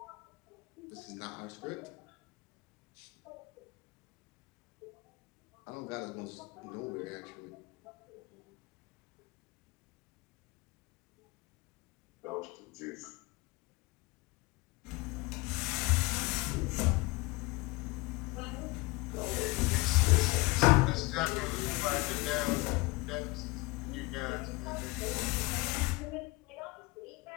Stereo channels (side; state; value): right; quieter; 23.8 dB